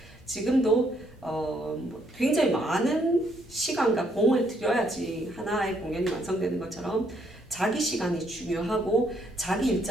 지금도 굉장히 많은 시간과 공을 들여야지 하나의 공연이 완성되는 것처럼 자기 시간이 중요하고 자기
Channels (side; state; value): both; normal; correlation 0.71